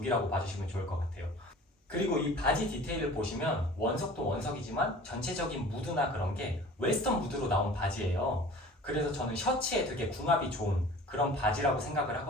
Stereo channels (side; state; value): both; normal; correlation 0.44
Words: 봐주시면 좋을 것 같아요. 그리고 이 바지 디테일을 보시면 원석도 원석이지만 전체적인 무드나 그런 게 웨스턴 무드로 나온 바지예요. 그래서 저는 셔츠에 되게 궁합이 좋은 그런 바지라고 생각을